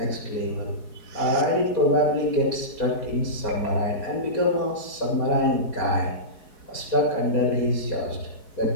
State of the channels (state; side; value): late; right; 4.7 ms